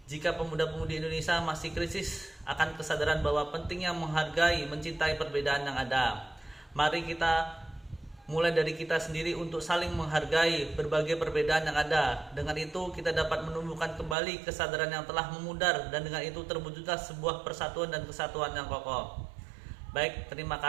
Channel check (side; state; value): left; drops out; at 14.2 s